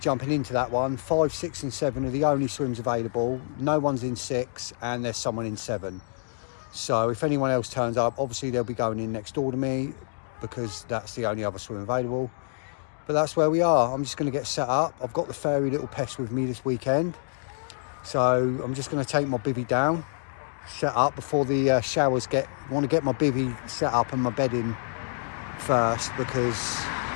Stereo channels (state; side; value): silent; right; digital silence